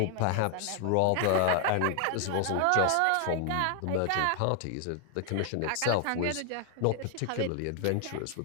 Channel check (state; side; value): different; both; correlation 0.00